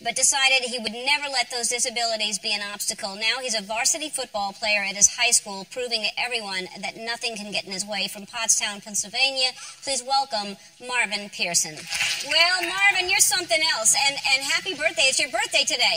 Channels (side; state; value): both; identical; correlation 1.00